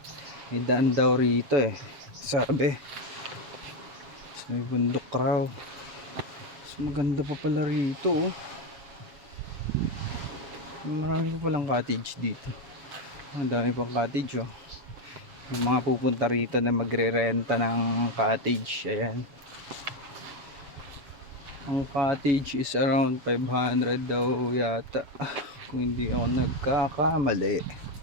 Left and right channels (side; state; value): left; late; 7.1 ms